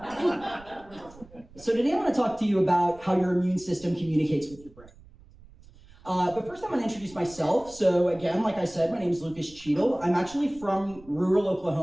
I want to talk to you about how your immune system communicates with your brain. But first I'm going to introduce myself. So again, like I said, my name is Lucas Cheadle. I'm actually from rural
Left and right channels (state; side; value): noise; right; rumble, 23 dB below the sound